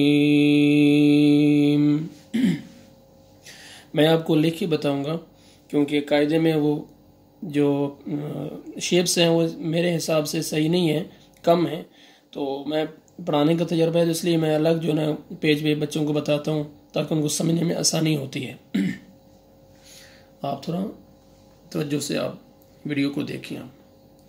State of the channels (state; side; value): identical; both; correlation 1.00